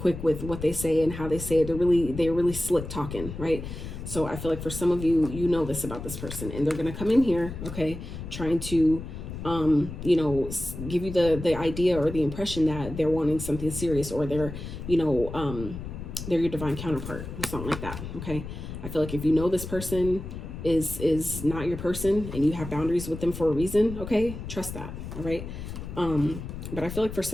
with what they say and how they say it. They're really slick talking, right? So I feel like for some of you, you know this about this person, and they're going to come in here, okay, trying to, you know, give you the idea or the impression that they're wanting something serious, or they're, you know, they're your divine counterpart or something like that. Okay. I feel like if you know this person is not your person, and you have boundaries with them for a reason, okay, trust that. All right. But I feel like for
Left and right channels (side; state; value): left; noise; rumble, 9 dB below the sound